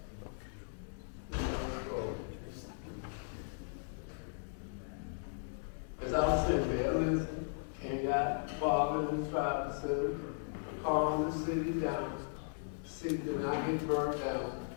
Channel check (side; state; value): right; silent; digital silence